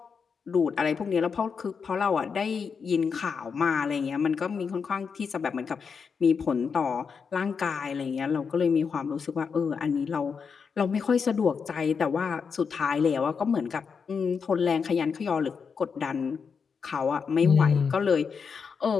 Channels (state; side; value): quieter; right; 5.9 dB